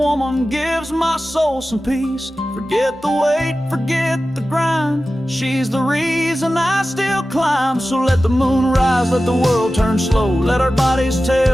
gives my soul some peace. Forget the weight, forget the grind. She's the reason I still climb. So let the moon rise, let the world turn slow. Let our bodies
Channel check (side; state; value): both; normal; correlation 0.94